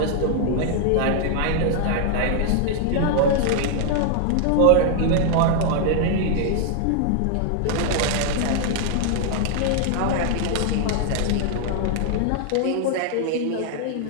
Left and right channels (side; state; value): both; different; correlation 0.00